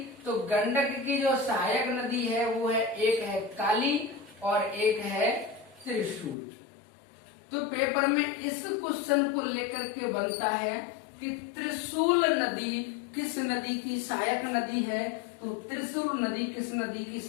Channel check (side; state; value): right; drops out; at 6.4 s